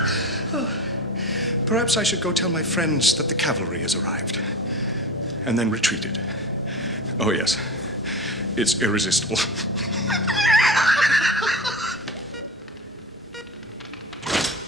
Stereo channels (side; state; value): both; normal; correlation 0.30